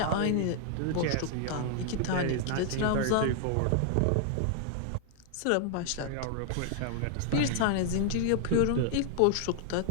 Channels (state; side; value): different; both; correlation 0.00